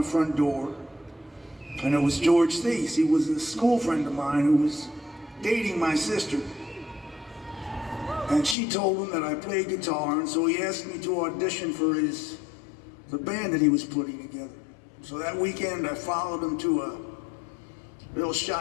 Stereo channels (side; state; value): right; drops out; at 8.6 s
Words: front door, and it was George Thies. He was a school friend of mine who was dating my sister. And she told him that I played guitar, and so he asked me to audition for the band that he was putting together. So that weekend, I followed him to a little